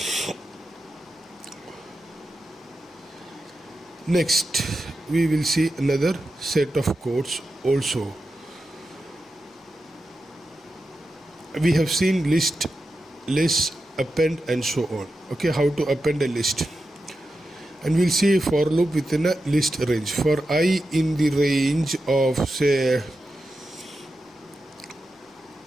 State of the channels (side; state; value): both; normal; correlation 0.90